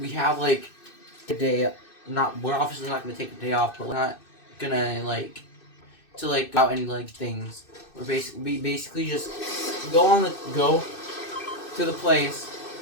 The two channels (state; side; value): late; right; 2.6 ms